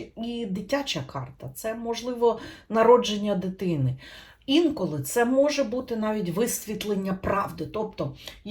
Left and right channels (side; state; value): both; identical; correlation 1.00